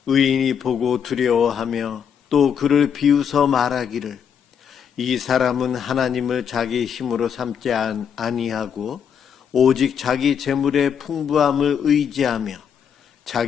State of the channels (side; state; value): right; quieter; 7.7 dB